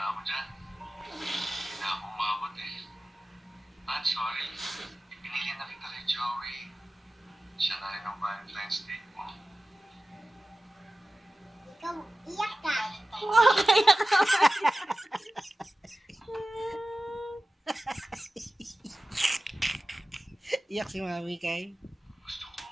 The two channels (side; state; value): both; normal; correlation 0.96